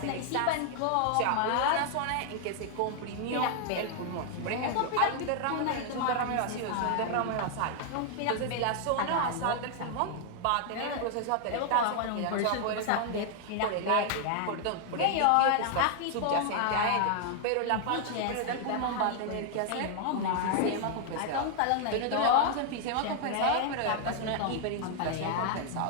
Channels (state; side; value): different; both; correlation 0.00